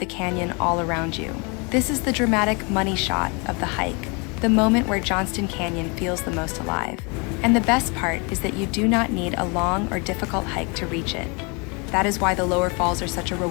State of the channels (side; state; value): right; quieter; 31.3 dB